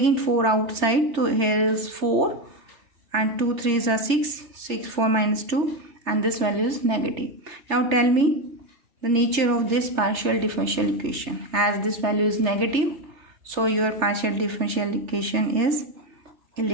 4 outside. So here is 4 and 2 3s are 6. 6 4 minus 2, and this value is negative. Now tell me the nature of this partial differential equation. As this value is negative, so your partial differential equation is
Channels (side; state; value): left; late; 3.3 ms